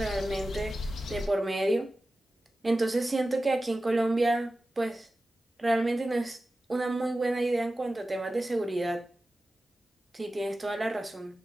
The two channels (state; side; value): normal; both; correlation 0.95